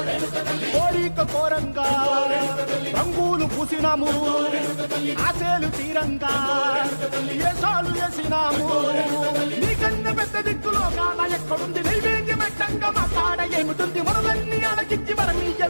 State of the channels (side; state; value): both; inverted; correlation -1.00